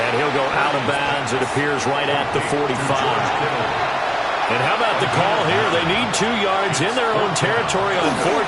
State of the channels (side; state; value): both; identical; correlation 1.00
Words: he'll go out of bounds, it appears, right at the 45. And how about the call here? They need 2 yards in their own territory on